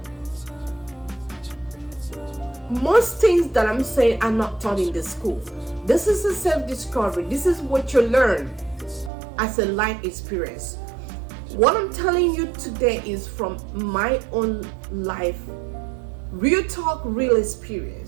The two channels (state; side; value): drops out; left; at 9.1 s